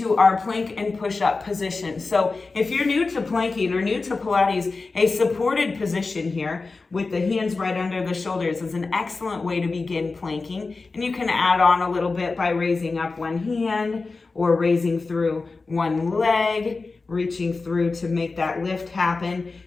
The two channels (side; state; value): right; quieter; 3.9 dB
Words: our plank and push-up position. So if you're new to planking or new to Pilates, a supported position here with the hands right under the shoulders is an excellent way to begin planking. And you can add on a little bit by raising up one hand or raising through one leg, reaching through to make that lift happen.